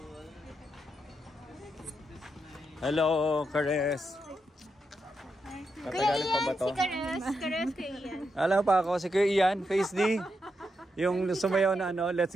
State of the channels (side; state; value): both; normal; correlation 0.84